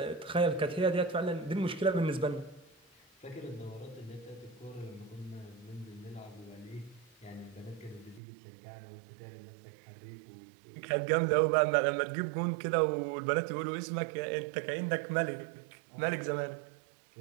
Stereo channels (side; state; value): left; drops out; at 8.2 s